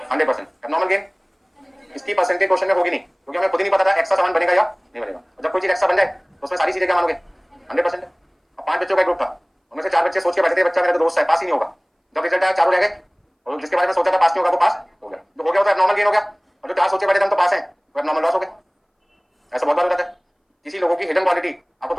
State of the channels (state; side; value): identical; both; correlation 1.00